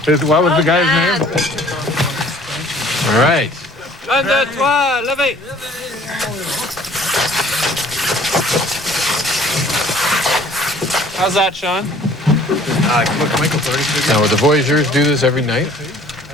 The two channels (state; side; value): normal; both; correlation 0.53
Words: What was the guy's name? All right. Un, deux, trois, levez. How's that, Sean? Now, would the voyageurs do this every night?